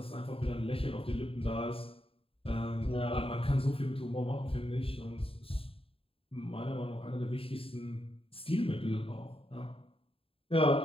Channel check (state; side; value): late; right; 0.27 ms